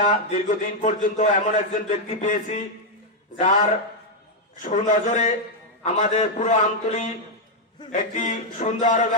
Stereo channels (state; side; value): normal; both; correlation 0.00